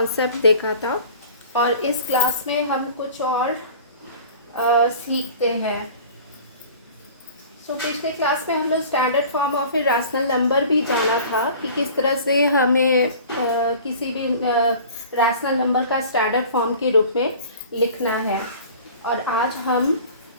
देखा था और इस क्लास में हम कुछ और सीखते हैं। पिछले क्लास में हम लोग standard form of a rational number भी जाना था कि किस तरह से हमें किसी भी रैशनल नंबर का स्टैंडर्ड फॉर्म के रूप में लिखना है। और आज हम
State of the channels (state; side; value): inverted; both; correlation -0.44